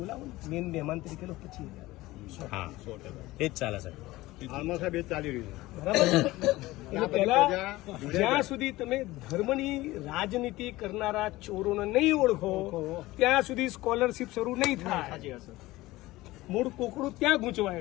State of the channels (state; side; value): quieter; right; 18.6 dB